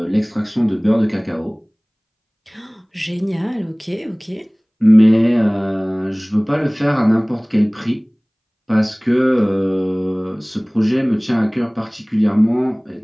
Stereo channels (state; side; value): identical; both; correlation 1.00